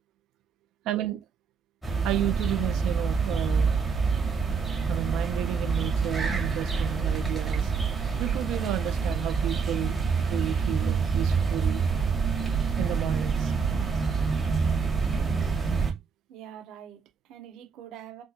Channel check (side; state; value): left; quieter; 5.7 dB